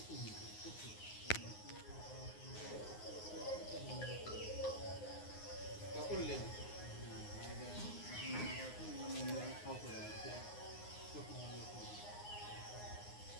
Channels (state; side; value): late; right; 9.6 ms